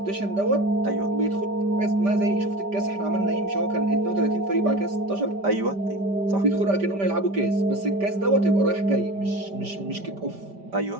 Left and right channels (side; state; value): left; late; 5.1 ms